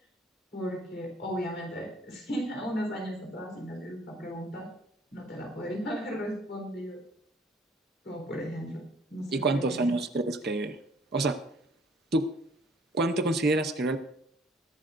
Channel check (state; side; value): normal; both; correlation 0.58